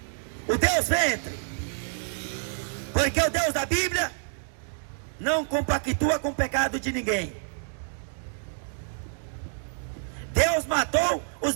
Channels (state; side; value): silent; left; digital silence